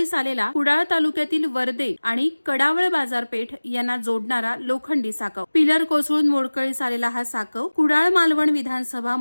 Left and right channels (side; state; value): both; inverted; correlation -1.00